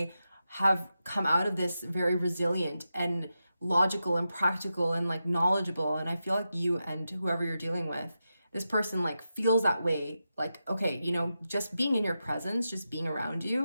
have come out of this very resilient and logical and practical and like knowledgeable. And I feel like you and whoever you're dealing with, this person like feels that way. Like, okay, you know, just being in your presence, just being around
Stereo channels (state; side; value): inverted; both; correlation -0.89